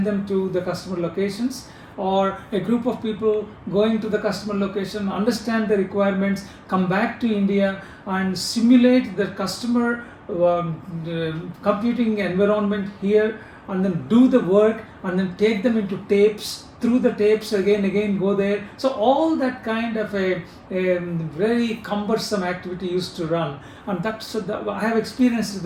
them to the customer locations, or a group of people going to the customer location, understand the requirements, come back to India and simulate the customer computing environment here, and then do the work and then take them into tapes, through the tapes again go there. So all that kind of a very cumbersome activity used to run, and I have experienced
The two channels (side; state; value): both; identical; correlation 1.00